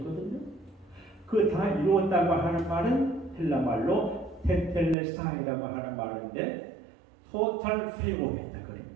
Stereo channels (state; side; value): drops out; left; at 5.0 s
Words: 그 다 이루었다고 하는 말은 헬라 말로 테텔레스타이라고 하는 말인데 토탈 프리오했다 그런